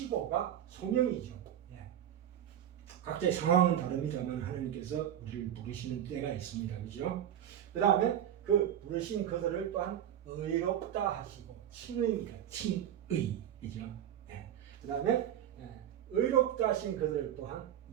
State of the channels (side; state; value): left; quieter; 10.6 dB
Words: 소명이죠. 각자의 상황은 다릅니다만 하나님께서 우리를 부르시는 때가 있습니다. 그죠? 그 다음에 그 부르신 그들을 또한 의롭다 하시고 칭의입니다. 칭의. 그죠? 그 다음에 의롭다 하신 그들 또한